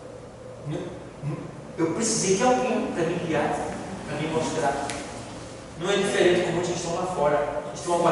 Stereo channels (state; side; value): identical; both; correlation 1.00